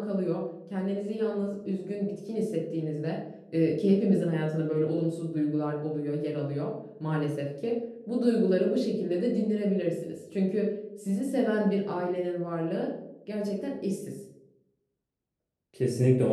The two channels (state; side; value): identical; both; correlation 1.00